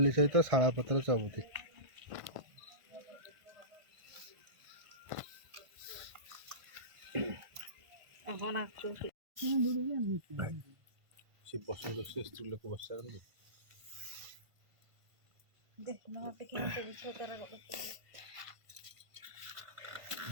ସହିତ ଶାଳ ପତ୍ର ଚବୁତି। ସେ ବସନ୍ତ ସେ ସ୍ତ୍ରୀ ଲୋକ ବସାନ୍ତି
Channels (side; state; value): left; late; 1.5 ms